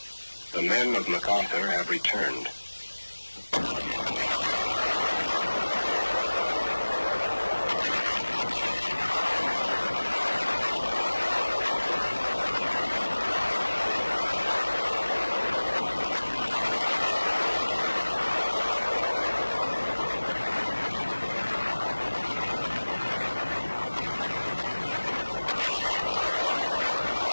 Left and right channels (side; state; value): both; inverted; correlation -1.00